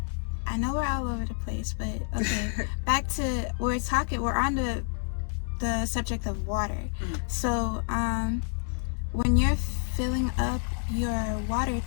I know we're all over the place, but okay. Back to we're on the subject of water. So when you're filling up your water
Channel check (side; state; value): right; silent; 59 dB below the other